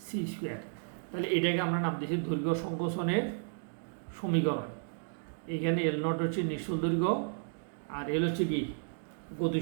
তাহলে এটাকে আমরা নাম দিয়েছি দৈর্ঘ্য সংকোচনের সমীকরণ। এখানে এল নট হচ্ছে নিশ্চল দৈর্ঘ্য আর এল হচ্ছে কি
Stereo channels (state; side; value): silent; left; digital silence